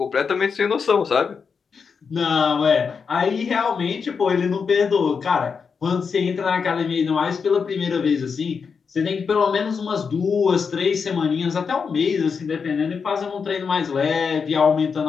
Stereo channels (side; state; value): right; quieter; 5.8 dB